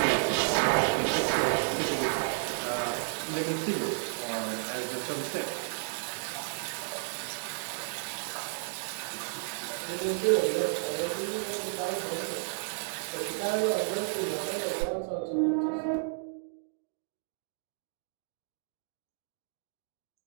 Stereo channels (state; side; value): silent; left; digital silence